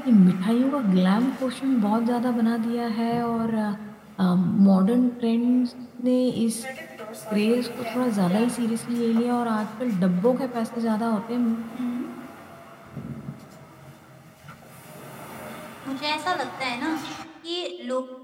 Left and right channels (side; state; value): both; identical; correlation 1.00